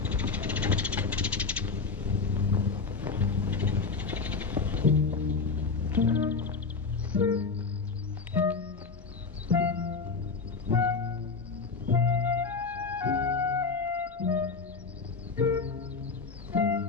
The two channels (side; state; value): right; quieter; 4.7 dB